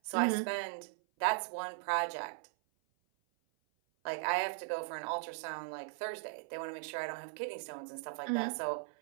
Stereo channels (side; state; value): left; silent; 52 dB below the other